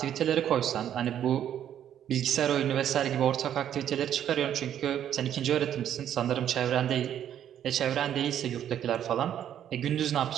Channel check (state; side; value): quieter; left; 10.2 dB